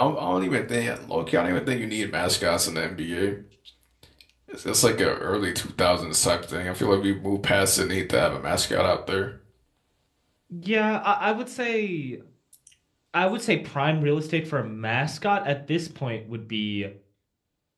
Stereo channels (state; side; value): identical; both; correlation 1.00